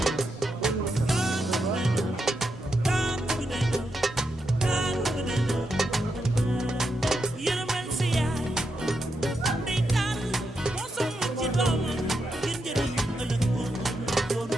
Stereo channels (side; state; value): both; normal; correlation 0.84